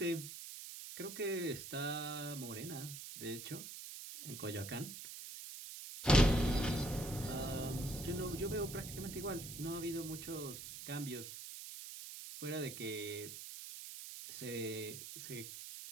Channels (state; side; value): noise; right; hiss, 9 dB below the sound